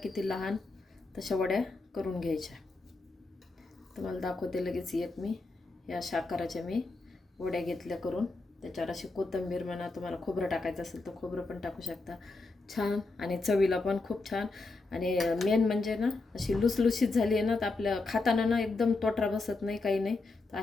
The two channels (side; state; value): right; quieter; 3.5 dB